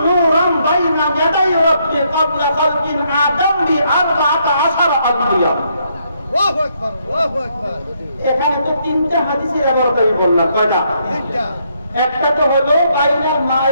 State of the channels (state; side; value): inverted; both; correlation -0.73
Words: নূরান বাইনা ইয়াদাই রাব্বি ক্বাবলা খালকিল আদম বি ৪০ আকবার আল্লাহু আকবার এখানে তো তিনটা হাদিসের ব্যবহার করে বললাম কয়টা তিনটা একটা তো হলো বাইনাল